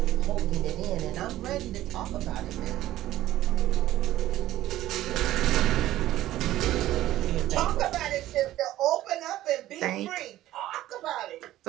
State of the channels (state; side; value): quieter; left; 14.5 dB